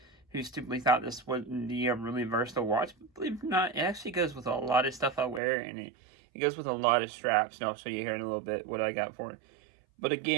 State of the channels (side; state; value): left; drops out; at 5.4 s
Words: who stupidly thought this wasn't the really versatile watch. But believe it or not, it actually goes with a lot of stuff I wear, and it goes with a lot of straps, and I'll show you here in a little bit what I got for it. But